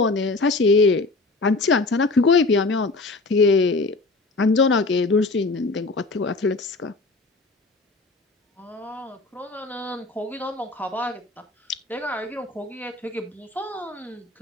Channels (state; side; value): quieter; right; 3.4 dB